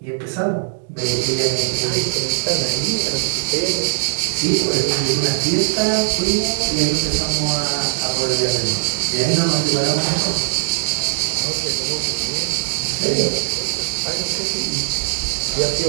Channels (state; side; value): silent; left; digital silence